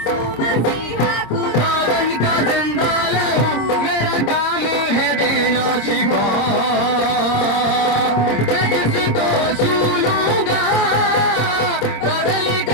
मसीहा खुदावन का जिंदा लहू। मेरा काम है देना शिफा। मैं जिसको छू लूंगा बदल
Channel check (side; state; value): right; late; 25 ms